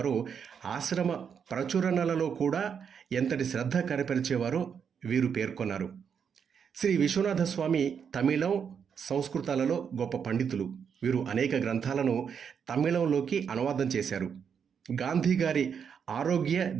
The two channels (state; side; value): quieter; left; 7.1 dB